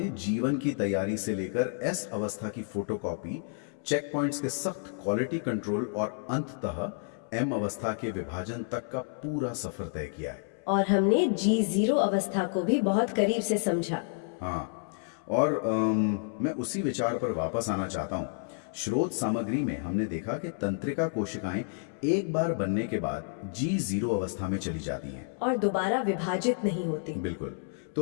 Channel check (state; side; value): silent; right; 58 dB below the other